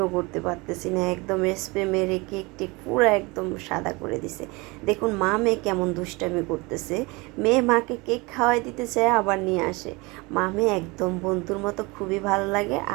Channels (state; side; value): quieter; left; 25.3 dB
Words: করতে পারতেছি না। একদম স্প্রে মেরে কেকটি পুরো একদম সাদা করে দিছে। দেখুন মা মেয়ে কেমন দুষ্টামি করতেছে। মেয়ে মাকে কেক খাওয়াই দিতে চায়, আবার নিয়ে আসে। মা মেয়ে একদম বন্ধুর মতো, খুবই ভালো লাগে।